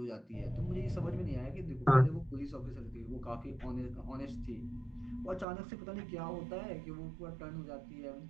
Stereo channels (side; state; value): left; drops out; at 5.5 s